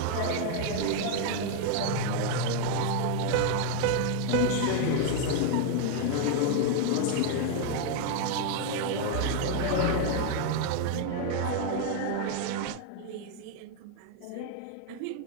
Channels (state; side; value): different; both; correlation 0.00